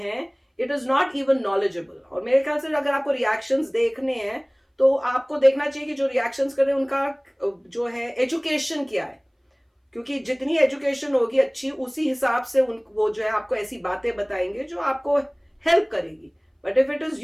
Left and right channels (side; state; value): both; identical; correlation 1.00